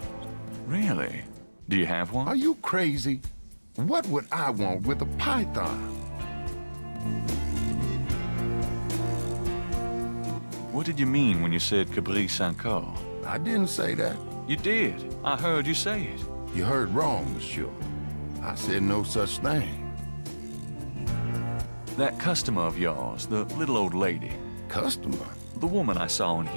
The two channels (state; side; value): inverted; both; correlation -1.00